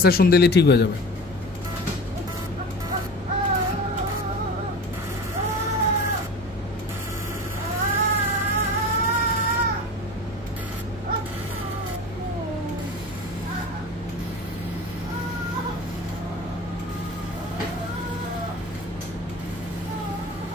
সেশন দিলে ঠিক হয়ে যাবে।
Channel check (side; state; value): both; normal; correlation 0.34